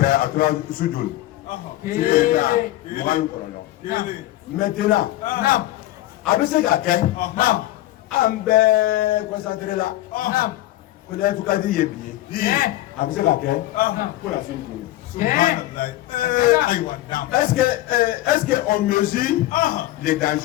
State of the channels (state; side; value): quieter; right; 15.8 dB